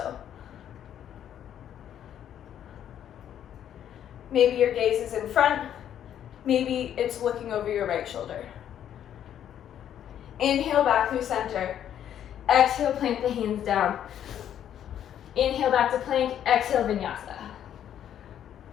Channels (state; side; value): quieter; right; 10.1 dB